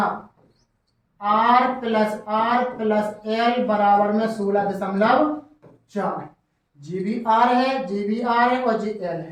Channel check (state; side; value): identical; both; correlation 1.00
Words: R प्लस एल बराबर में 16.4, जी भी आर है, जी भी आर है और जी एल